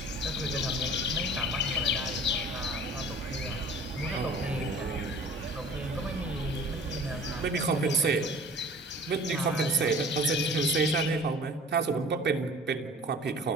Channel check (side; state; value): both; normal; correlation 0.46